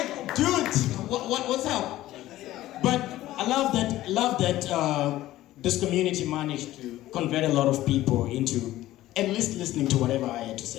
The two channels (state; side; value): quieter; right; 15.3 dB